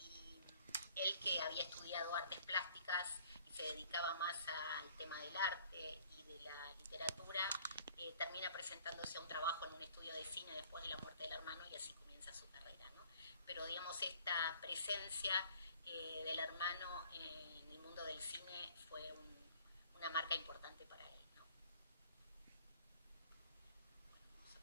él, que había estudiado artes plásticas y se dedicaba más al tema del arte y de la literatura, termina presentándose a un trabajo en un estudio de cine después de la muerte del hermano, y así comienza su carrera, ¿no? Pero digamos, esta presencia del hermano en el mundo del cine fue una marca importante para él, ¿no? Vamos a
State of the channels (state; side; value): inverted; both; correlation -0.56